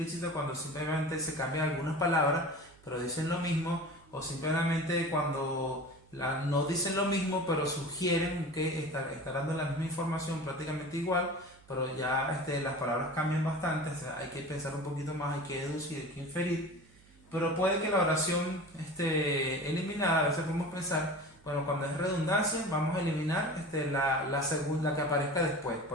cuando simplemente se cambian algunas palabras, pero dicen lo mismo, o simplemente cuando no dicen lo mismo, pero sugieren que está dando la misma información prácticamente igual, pero ya las palabras cambian bastante, o sea, hay que pensar un poquito más, hay que deducir, hay que inferir. Pero puede que la oración eliminada, a veces podemos pensar, bueno, cuando es redundancia, vamos a eliminar la segunda que aparezca después.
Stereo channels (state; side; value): noise; right; hum, 27 dB below the sound